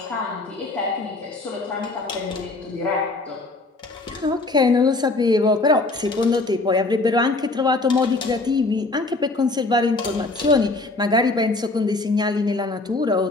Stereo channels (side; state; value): right; quieter; 3.2 dB